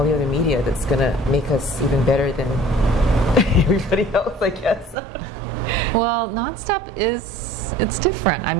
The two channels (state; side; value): drops out; left; at 5.0 s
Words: the other media that's gonna make us even better than everybody else, I guess? Well, Nonstop it's different. I